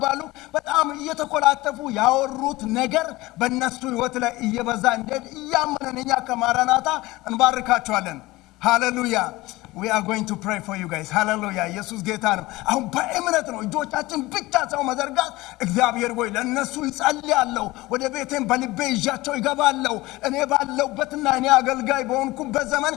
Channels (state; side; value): quieter; right; 19.7 dB